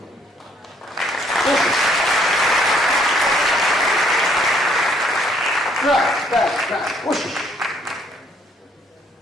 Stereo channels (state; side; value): normal; both; correlation 0.66